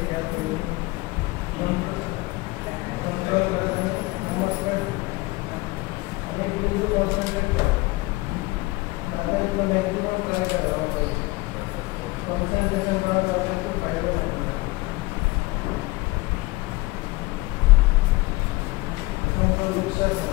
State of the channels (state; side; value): quieter; right; 22.2 dB